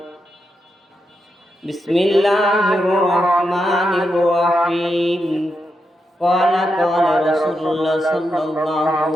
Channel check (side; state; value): both; normal; correlation 0.85